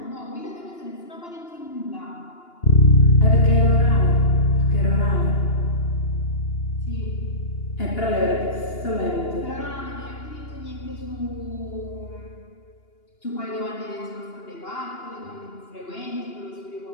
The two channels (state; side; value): late; right; 2.8 ms